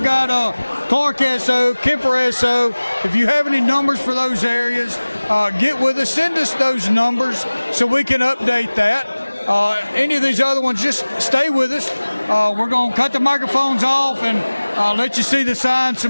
Clark SO, Kemper SO. If you have any numbers for those areas, get with us. Send us those numbers so we can update that. Any of these other ones, just stay with us. We're going to cut the microphones off and let you see the sign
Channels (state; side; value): inverted; both; correlation -1.00